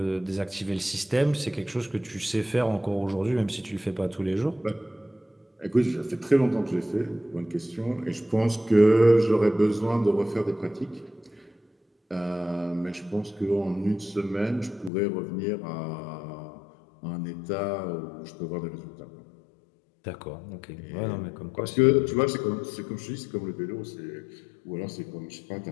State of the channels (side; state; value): right; drops out; at 14.9 s